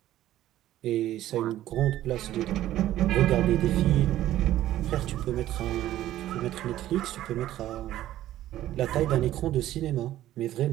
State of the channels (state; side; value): quieter; left; 13.6 dB